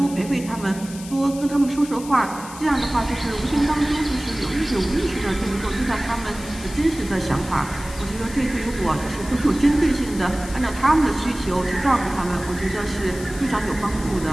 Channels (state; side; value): noise; left; hiss, 15 dB below the sound